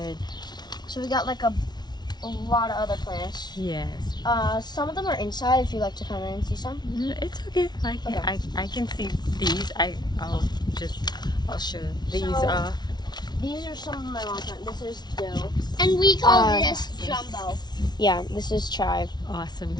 So we got like a lot of other plants. Yes. Some of them are inside. If you like to come in and see some. It's okay. Okay. I can see these. I'll show these So- off. These are some of my mom's plants. This is dill. And we call Uh, this jumbo. Yeah, this is chive. Awesome.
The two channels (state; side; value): late; right; 0.20 ms